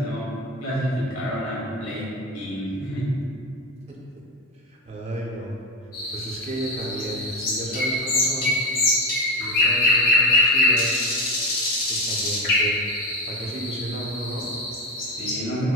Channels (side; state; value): both; normal; correlation 0.16